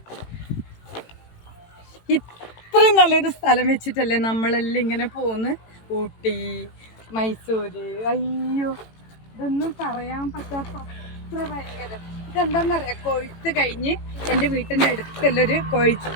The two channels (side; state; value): right; late; 18 ms